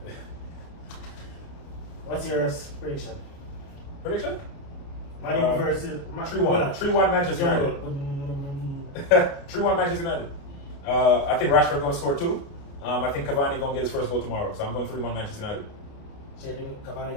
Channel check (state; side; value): late; right; 29 ms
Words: What's your prediction? prediction. Man U versus 3-1. 3-1 Manchester United. 3-1 Manchester United. I think Rashford going to score 2. I think Cavani going to get his first goal tomorrow. So I'm going 3-1 Manchester United. So you think Cavani